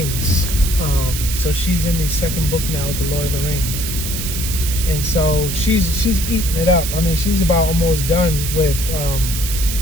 So she's in the second book now with The Lord of the Rings. And so she's eating it up. I mean, she's about almost done with,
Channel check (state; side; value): noise; right; hiss, 5 dB below the sound